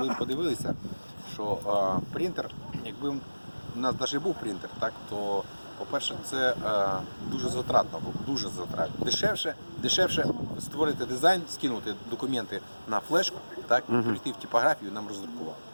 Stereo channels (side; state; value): both; inverted; correlation -1.00